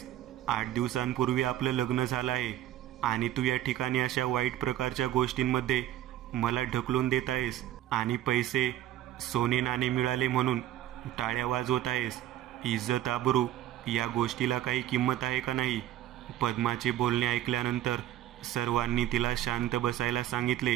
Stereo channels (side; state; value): left; quieter; 12.9 dB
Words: 8 दिवसांपूर्वी आपलं लग्न झालं आहे आणि तू या ठिकाणी अशा वाईट प्रकारच्या गोष्टींमध्ये मला ढकलून देत आहेस आणि पैसे सोने नाणे मिळाले म्हणून टाळ्या वाजवत आहेस? इज्जत आबरू या गोष्टीला काही किंमत आहे का नाही? पद्माचे बोलणे ऐकल्यानंतर सर्वांनी तिला शांत बसायला